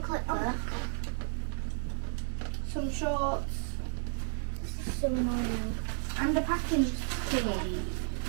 click there? Some shorts. This is so annoying. And a packing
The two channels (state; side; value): silent; left; 56 dB below the other